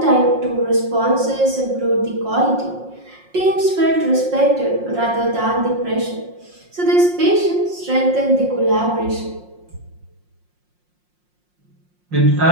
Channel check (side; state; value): left; late; 5.6 ms